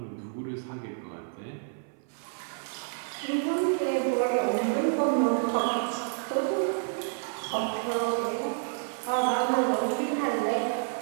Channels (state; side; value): silent; left; 58 dB below the other